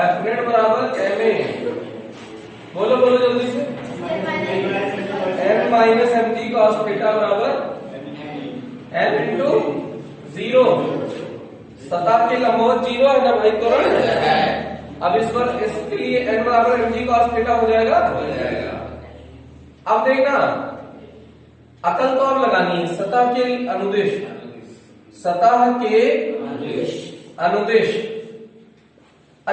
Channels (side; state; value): both; identical; correlation 1.00